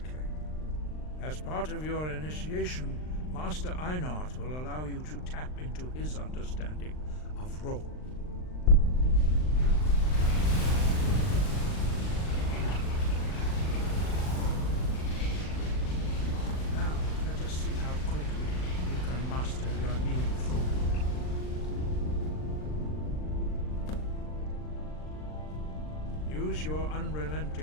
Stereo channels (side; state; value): right; late; 39 ms